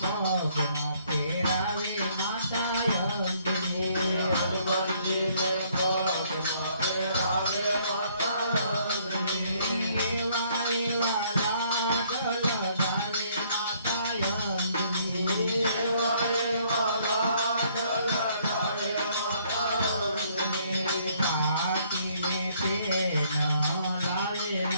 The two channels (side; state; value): both; inverted; correlation -0.65